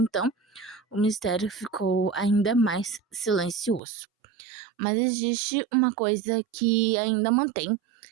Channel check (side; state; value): left; drops out; at 3.8 s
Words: o mistério ficou ainda mais silencioso. Mas existe uma coisa que ainda mantém